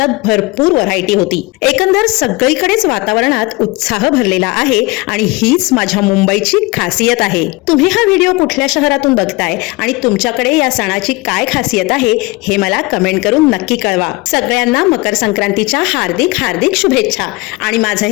भरपूर व्हरायटी होती। एकंदर सगळीकडेच वातावरणात उत्साह भरलेला आहे आणि हीच माझ्या मुंबईची खासियत आहे। तुम्ही हा व्हिडिओ कुठल्या शहरातून बघताय आणि तुमच्याकडे या सणाची काय खासियत आहे हे मला कमेंट करून नक्की कळवा। सगळ्यांना मकर संक्रांतीच्या हार्दिक हार्दिक शुभेच्छा आणि माझं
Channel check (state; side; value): quieter; right; 24.1 dB